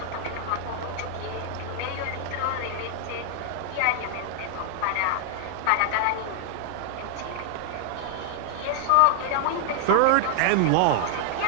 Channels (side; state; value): both; different; correlation 0.00